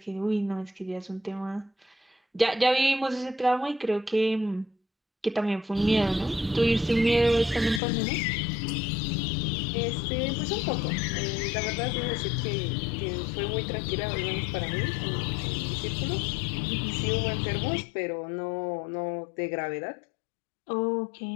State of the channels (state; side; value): drops out; right; at 7.8 s